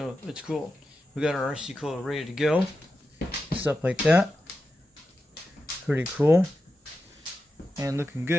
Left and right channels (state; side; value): normal; both; correlation 0.90